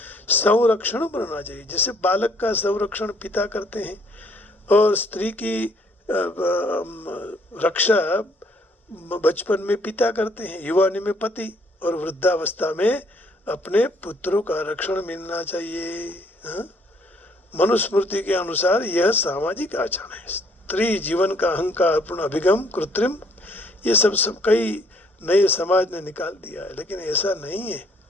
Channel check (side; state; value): both; normal; correlation 0.64